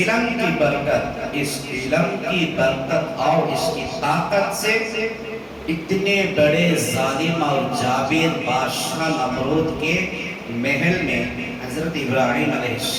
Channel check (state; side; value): identical; both; correlation 1.00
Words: کی برکت، اس علم کی برکت اور اس کی طاقت سے اتنے بڑے ظالم اور جابر بادشاہ نمرود کے محل میں حضرت ابراہیم علیہ